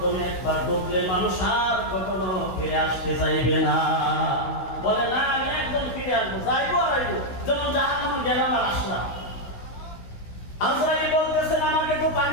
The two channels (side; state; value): right; late; 16 ms